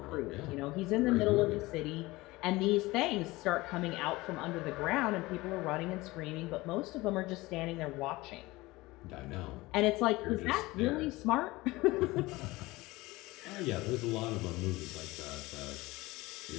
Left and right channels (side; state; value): right; quieter; 20.6 dB